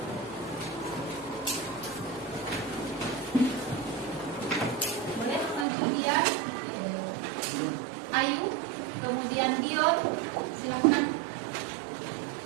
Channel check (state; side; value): drops out; left; at 5.7 s